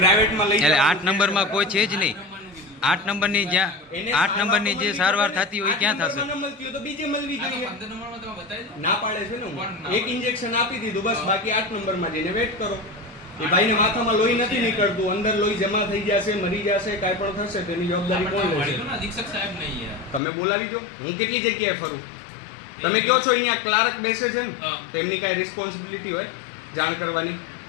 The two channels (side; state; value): right; drops out; at 20.2 s